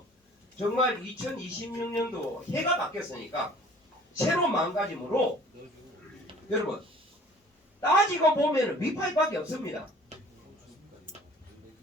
정말 2026년도 해가 바뀌었으니까 새로운 마음가짐으로 여러분 따지고 보면 위파이밖에 없습니다.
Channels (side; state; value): both; normal; correlation 0.51